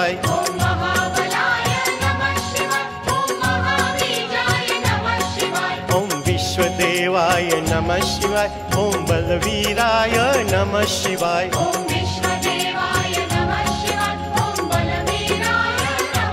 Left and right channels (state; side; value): identical; both; correlation 1.00